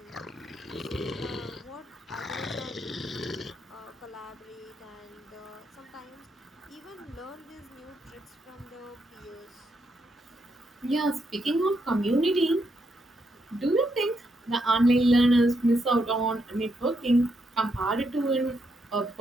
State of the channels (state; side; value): normal; both; correlation 0.79